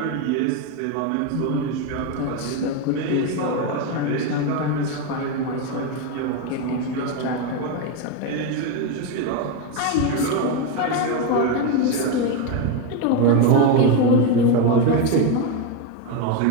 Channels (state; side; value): different; both; correlation 0.03